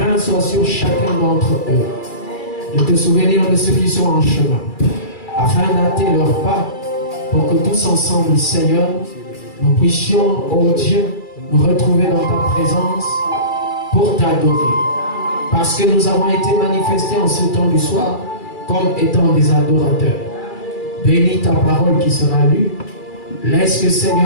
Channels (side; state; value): right; late; 2.3 ms